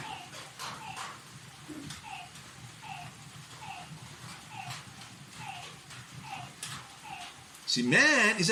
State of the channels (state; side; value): identical; both; correlation 1.00